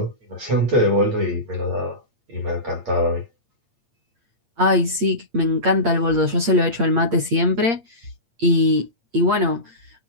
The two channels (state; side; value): late; left; 8.7 ms